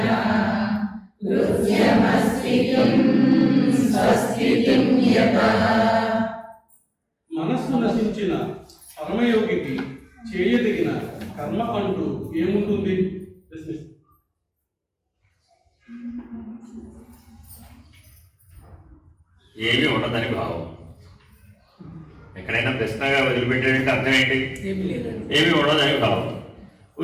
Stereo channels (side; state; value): both; identical; correlation 1.00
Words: మనస్సు నశించిన పరమయోగికి చేయదగిన కర్మ అంటూ ఏముంటుంది? ఏమీ ఉండదని భావం. ఎక్కడైనా ప్రశ్నగా వదిలిపెట్టాడంటే అర్థం ఏంటి? ఏమీ ఉండదని భావం.